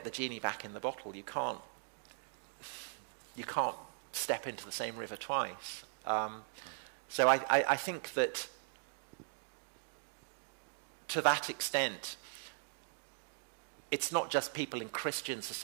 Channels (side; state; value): left; silent; digital silence